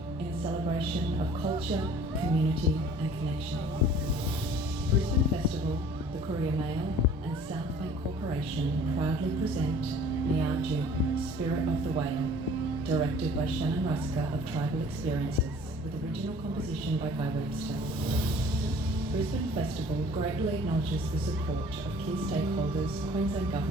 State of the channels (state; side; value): normal; both; correlation 0.50